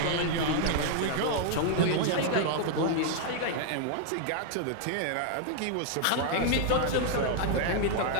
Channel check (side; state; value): both; different; correlation 0.00